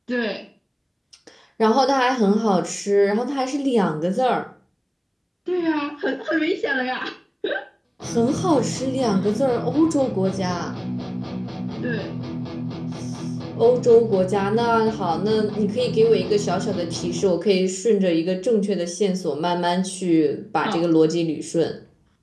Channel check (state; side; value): identical; both; correlation 1.00